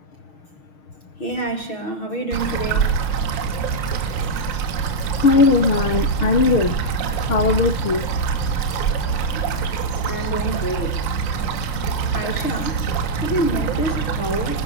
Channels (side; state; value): right; late; 5.6 ms